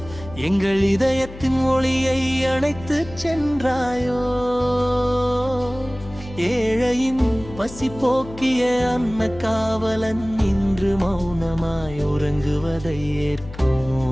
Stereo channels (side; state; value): left; noise; hum, 15 dB below the sound